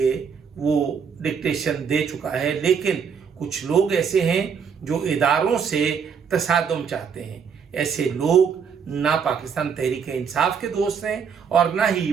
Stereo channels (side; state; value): left; quieter; 6.6 dB